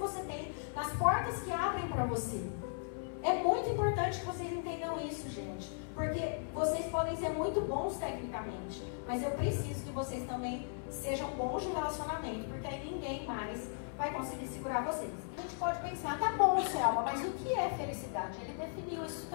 tem, nas portas que abrem para você. É muito importante que vocês entendam isso, gente. Porque vocês podem ser muito bons tecnicamente, mas eu preciso que vocês também sejam bons de relacionamento, porque aí ninguém mais vai conseguir segurar vocês. A gente pode pensar, tá bom, Selma, mas o que é felicidade? Ele definiu isso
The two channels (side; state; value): right; silent; 53 dB below the other